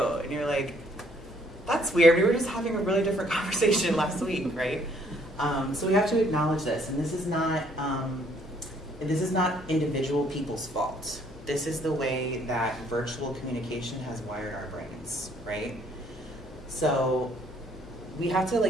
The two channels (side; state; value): left; noise; hum, 21 dB below the sound